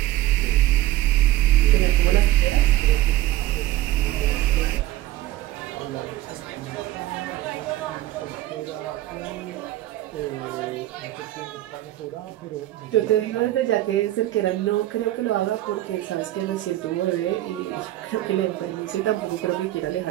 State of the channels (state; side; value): quieter; left; 15.3 dB